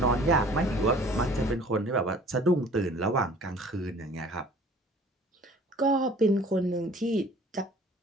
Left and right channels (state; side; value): normal; both; correlation 0.50